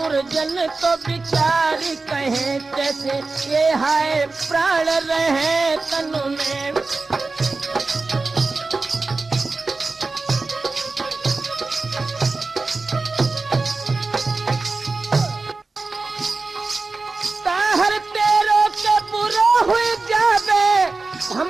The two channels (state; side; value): quieter; left; 3.7 dB